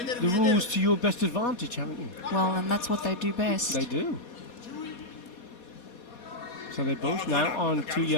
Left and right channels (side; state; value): right; late; 4.2 ms